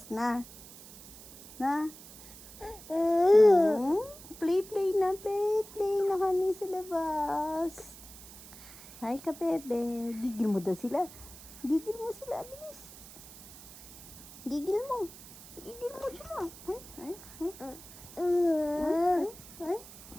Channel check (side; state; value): right; noise; hiss, 17 dB below the sound